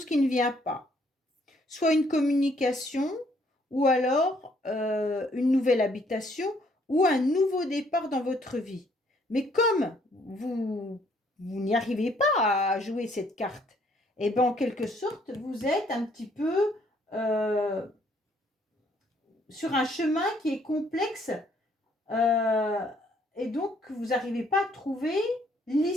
qui ne vient pas. Soit une communication, ou alors une nouvelle habitation, ou un nouveau départ dans votre vie. Mais comme vous n'y arrivez pas à jouer cette carte, et bien en quelque sorte, vous êtes un petit peu sur un chemin qui est complexe et donc vous n'arrivez pas à trouver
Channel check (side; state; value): both; normal; correlation 0.66